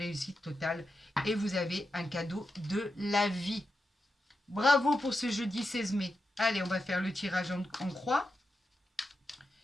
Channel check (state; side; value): normal; both; correlation 0.88